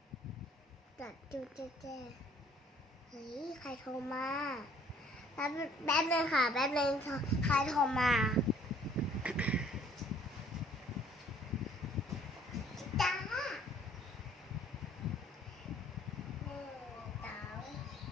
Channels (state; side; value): normal; both; correlation 0.57